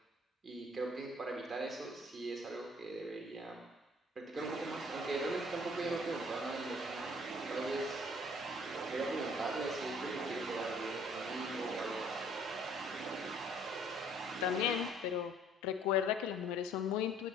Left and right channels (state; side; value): normal; both; correlation 0.57